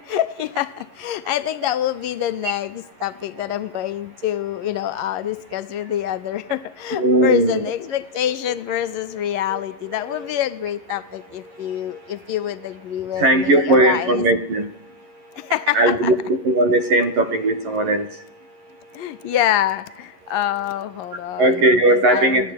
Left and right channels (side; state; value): left; late; 11 ms